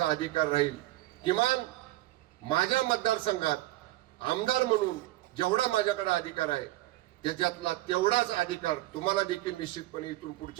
अधिकार राहील. किमान माझ्या मतदारसंघात आमदार म्हणून जेवढा माझ्याकडे अधिकार आहे त्याच्यातला तेवढाच अधिकार तुम्हाला देखील निश्चितपणे इथून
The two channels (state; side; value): quieter; left; 17.0 dB